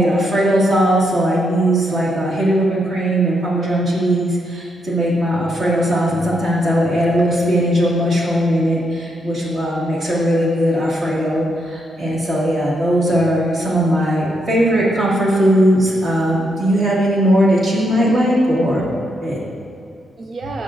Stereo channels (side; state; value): both; normal; correlation 0.79